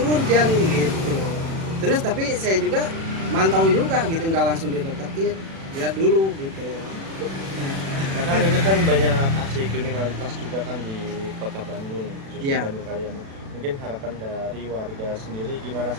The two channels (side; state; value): left; late; 36 ms